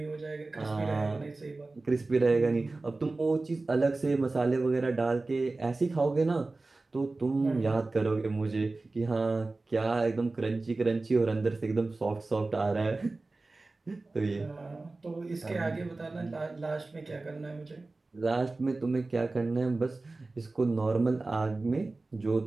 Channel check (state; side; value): quieter; left; 3.3 dB